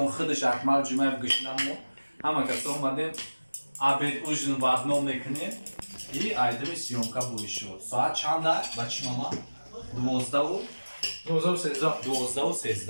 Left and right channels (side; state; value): both; inverted; correlation -1.00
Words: худаш акмал ҷумаев гӯшнамон ҳама касо омадем абед ужин варно мекунем и айдами сёмка будишо соат чанда бачи мама